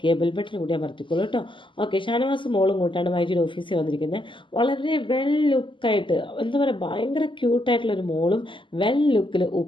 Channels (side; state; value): right; late; 0.24 ms